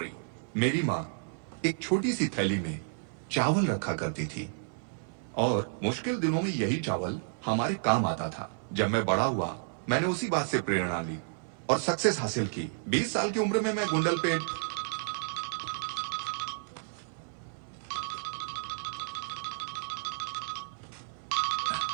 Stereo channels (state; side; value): silent; left; 57 dB below the other